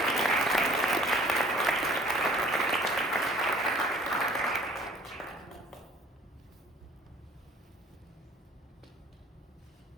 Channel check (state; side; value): normal; both; correlation 0.53